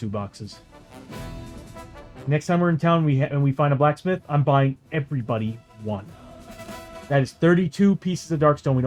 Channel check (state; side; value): identical; both; correlation 1.00